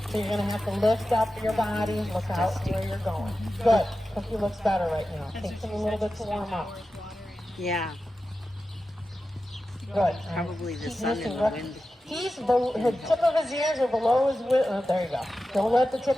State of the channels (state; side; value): normal; both; correlation 0.93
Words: you're going to have to lift up your body, look out where you're going. Good. Cookie looks better right now. Takes him a little bit to warm up. Yeah. Good. Probably the sun and the wind. He's the tip of his ears are below his withers. There you go. Don't let the